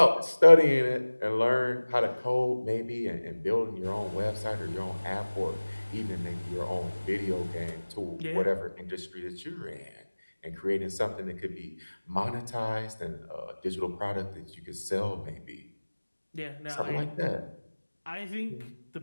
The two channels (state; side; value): inverted; both; correlation -1.00